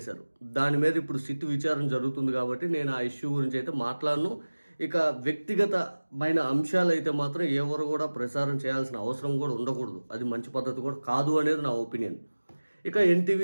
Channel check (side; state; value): both; inverted; correlation -1.00